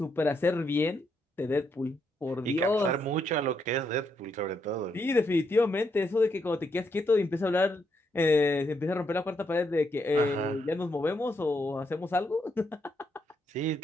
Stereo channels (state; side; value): normal; both; correlation 0.78